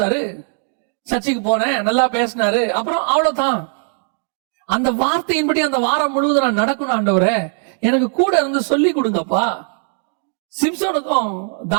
சர்ச்சைக்கு போனேன், நல்லா பேசினாரு, அப்புறம் அவ்வளவுதான். அந்த வார்த்தையின்படி அந்த வாரம் முழுவதும் நான் நடக்கணும் ஆண்டவரே, எனக்கு கூட இருந்து சொல்லி கொடுங்கப்பா. சிம்சோனுக்கும்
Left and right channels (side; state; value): left; silent; 56 dB below the other